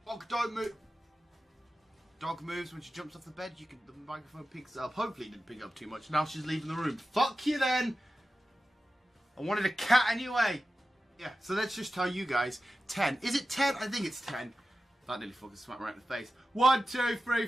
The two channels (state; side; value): normal; both; correlation 0.94